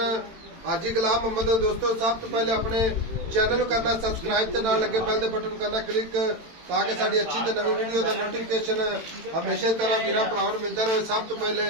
हाजी गुलाम मोहम्मद। दोस्तों सब तो पहले अपने चैनल को करना सबसक्राइब ते नाल लगे बेल दे बटन करना क्लिक ताकि साडी अच्छी ते नवी वीडियो दा नोटिफिकेशन हमेशा तरह वीरां भरावां नूं मिलदा रहे। सब तो पहले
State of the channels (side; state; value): left; late; 18 ms